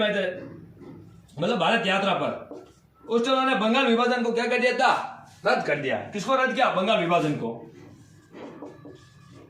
आए थे, मतलब भारत यात्रा पर। उस टाइम उन्होंने बंगाल विभाजन को क्या कर दिया था? रद्द कर दिया। किसको रद्द किया? बंगाल विभाजन को।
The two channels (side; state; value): both; identical; correlation 1.00